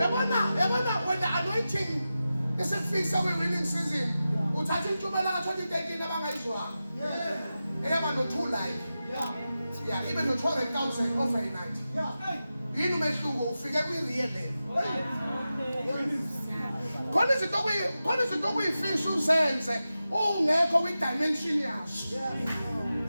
when the anointing is a fix of a winning season uthatha intshumayelo ka-2013 abangayizwanga eyaba no-2 life ibe no-200,000 overnight. Yini umehluko ufike kwi-real level. Khona izinto okuyifisha uzenze ungekho kwi-dimension yaso.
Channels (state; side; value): inverted; both; correlation -0.93